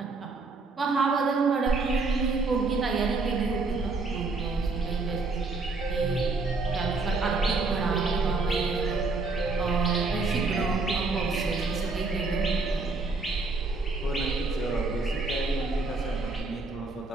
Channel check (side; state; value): left; quieter; 3.8 dB